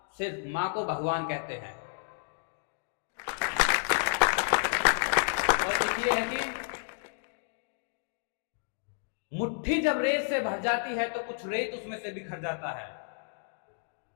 सिर्फ मां को भगवान कहते हैं। और एक ये है कि मुट्ठी जब रेत से भर जाती है तो कुछ रेत उसमें से बिखर जाता है।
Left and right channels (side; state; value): right; silent; digital silence